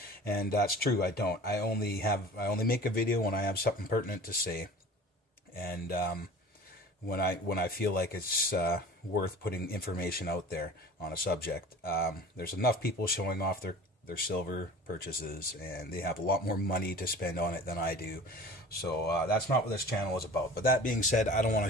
and that's true. I don't. I only make a video when I have something pertinent to say, and when I feel like it's worth putting information out there on a subject. There's enough people showing off their silver purchases, and they have a lot more money to spend on it than I do. So that's not what this channel is about. But that being said, I don't want to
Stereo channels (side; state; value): both; normal; correlation 0.42